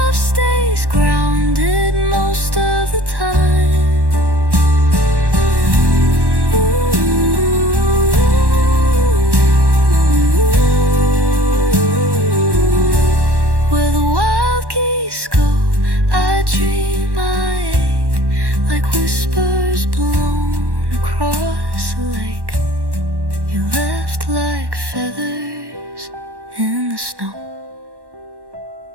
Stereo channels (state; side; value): late; left; 1.1 ms